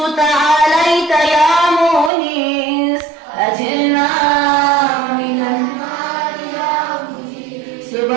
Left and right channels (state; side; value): drops out; left; at 2.1 s